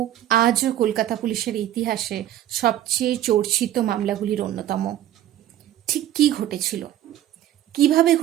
আজও কলকাতা পুলিশের ইতিহাসে সবচেয়ে চর্চিত মামলাগুলির অন্যতম। ঠিক কি ঘটেছিল, কিভাবে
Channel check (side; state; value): left; quieter; 12.3 dB